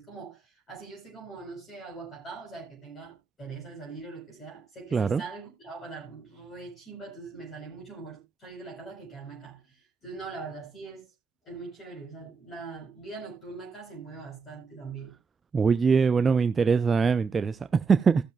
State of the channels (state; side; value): quieter; left; 5.2 dB